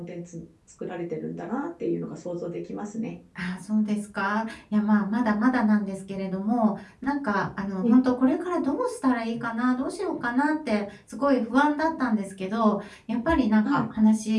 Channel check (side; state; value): both; identical; correlation 1.00